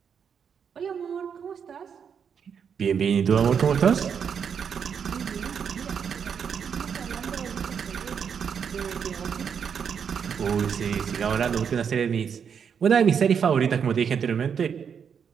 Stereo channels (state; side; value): quieter; left; 7.1 dB